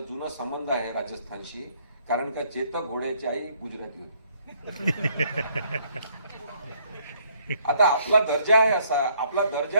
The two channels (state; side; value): inverted; both; correlation -0.65